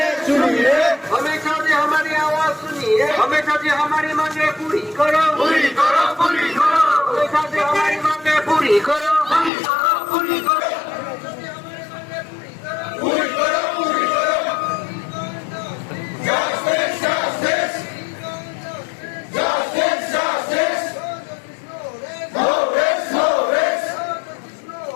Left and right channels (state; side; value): drops out; right; at 9.5 s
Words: हमेशा से हमारी आवाज सुनिए, हमेशा से हमारी मांगे पूरी करो, पूरी करो, पूरी करो। हमेशा से हमारी मांगे पूरी करो, पूरी करो, पूरी करो। पूरी करो, पूरी करो। Justice, justice. Justice, justice. No rest, no rest.